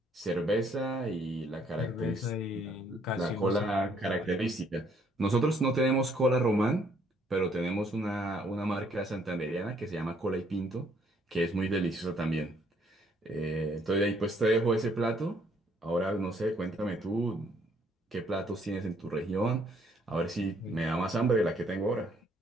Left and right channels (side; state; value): both; normal; correlation 0.66